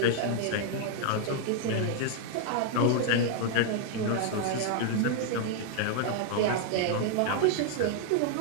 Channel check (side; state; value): both; different; correlation 0.00